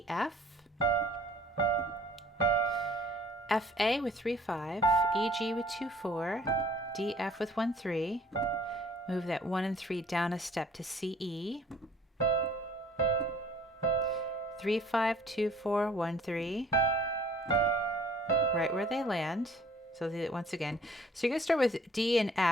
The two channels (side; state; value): both; normal; correlation 0.55